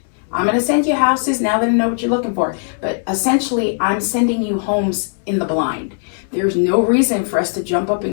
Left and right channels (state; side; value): silent; right; 67 dB below the other